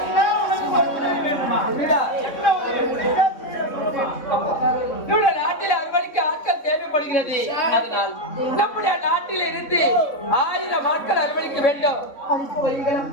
என்ன உனக்கு ஒரு உதவி வேணுமா? இல்லடா. என்ன உதவி? முடிஞ்சா சொல்லுமா? நம்முடைய நாட்டில் அறுவடைக்கு ஆட்கள் தேவைப்படுகிறது. அதனால் நம்முடைய நாட்டில் இருந்து 1000 ஆட்கள் அறுவடைக்க வேண்டும்.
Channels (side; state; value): right; late; 3.6 ms